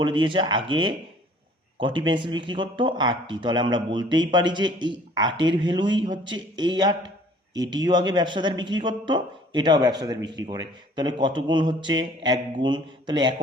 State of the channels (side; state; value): both; normal; correlation 0.54